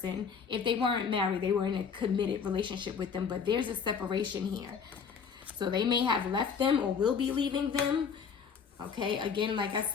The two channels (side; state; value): right; quieter; 6.4 dB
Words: If they weren't married, they were in a committed relationship with them, but there's a separation here. So they may have left them or will be leaving them. Okay, again, like I